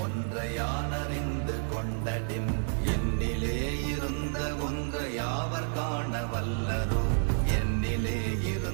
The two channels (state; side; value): silent; left; 58 dB below the other